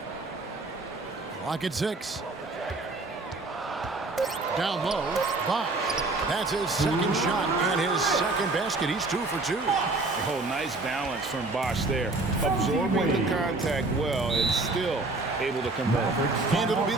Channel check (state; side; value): quieter; left; 3.2 dB